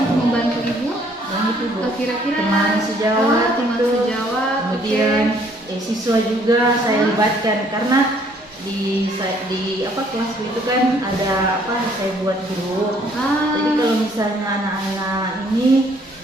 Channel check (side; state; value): both; normal; correlation 0.63